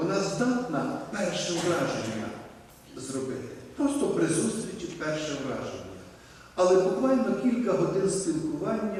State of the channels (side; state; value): both; identical; correlation 1.00